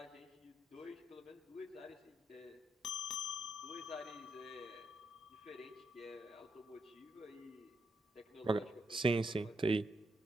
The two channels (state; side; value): normal; both; correlation 0.80